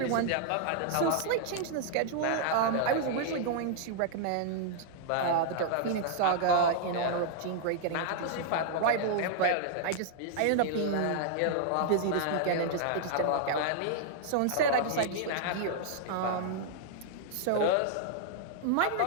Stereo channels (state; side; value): different; both; correlation -0.01